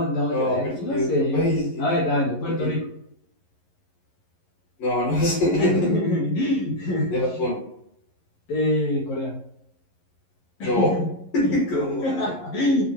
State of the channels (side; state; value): right; late; 11 ms